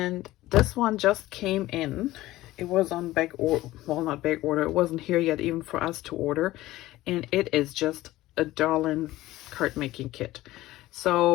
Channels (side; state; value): right; quieter; 16.7 dB